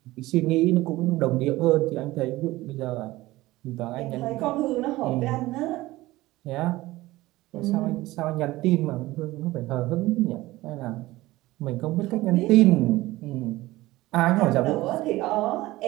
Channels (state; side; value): quieter; left; 18.3 dB